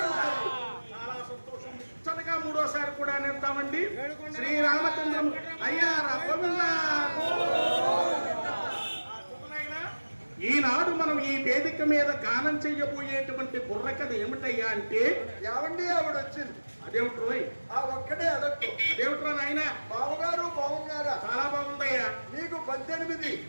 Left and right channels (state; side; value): inverted; both; correlation -1.00